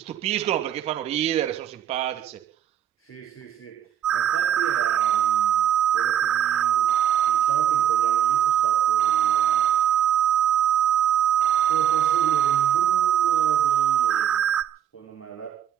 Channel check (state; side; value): quieter; left; 10.4 dB